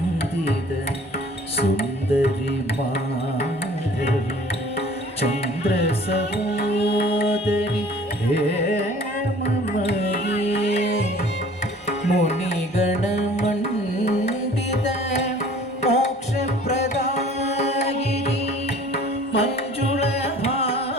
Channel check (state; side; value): normal; both; correlation 0.50